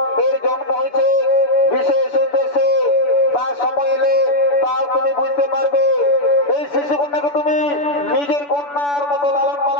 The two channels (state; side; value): late; right; 6.9 ms